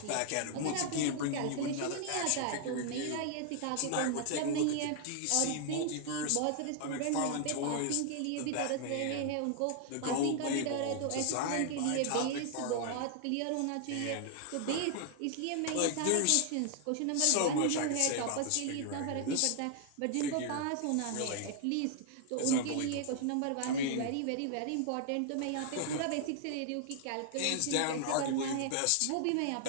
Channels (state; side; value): different; both; correlation 0.00